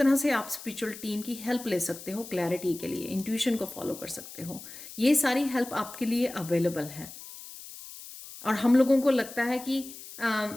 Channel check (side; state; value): left; noise; hiss, 14 dB below the sound